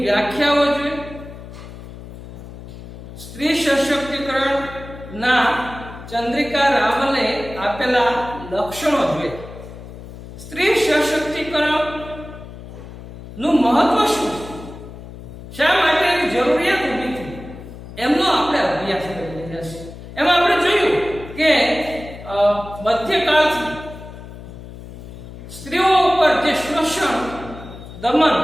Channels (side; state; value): left; noise; hum, 14 dB below the sound